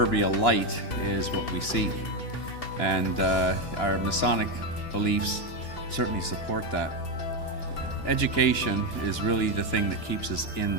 light is what we seek. And our Masonic beliefs certainly support that. Education is really the thing that keeps us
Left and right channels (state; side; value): late; right; 2.9 ms